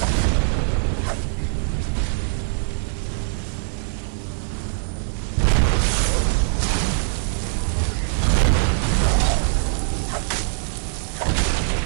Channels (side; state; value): left; silent; 61 dB below the other